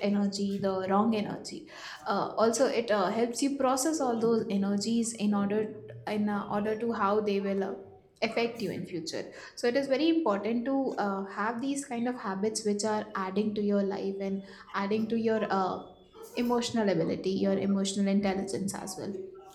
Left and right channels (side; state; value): both; identical; correlation 1.00